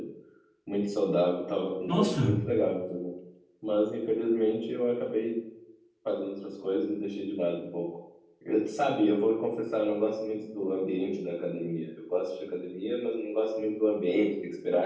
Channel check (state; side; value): identical; both; correlation 1.00